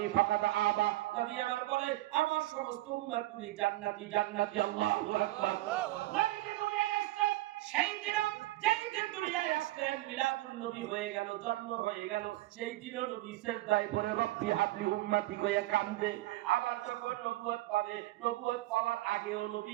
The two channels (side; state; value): left; quieter; 17.5 dB